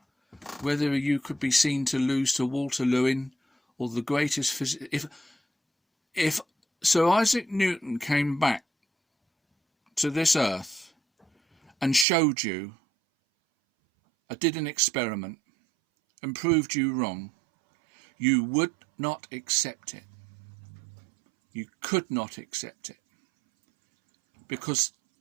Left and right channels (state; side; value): drops out; left; at 12.1 s